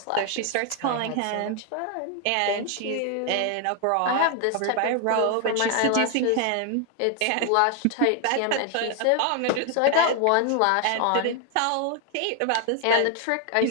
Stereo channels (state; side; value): different; both; correlation 0.00